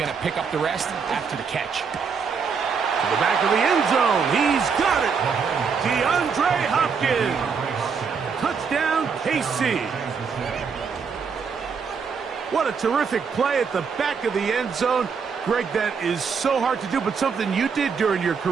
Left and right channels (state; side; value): quieter; left; 5.9 dB